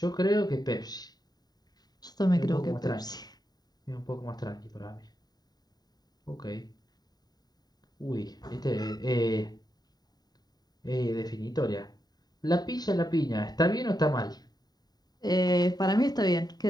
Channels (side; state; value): right; late; 0.19 ms